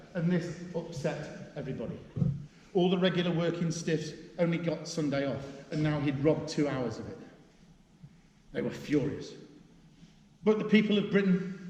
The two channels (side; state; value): both; identical; correlation 1.00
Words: And this upset everybody. All the regular working stiffs only got Sunday off, and now he'd robbed 2 hours of it. They were furious. But the people of